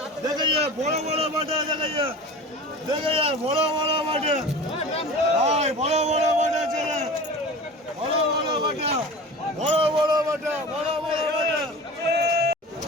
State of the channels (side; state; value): both; normal; correlation 0.35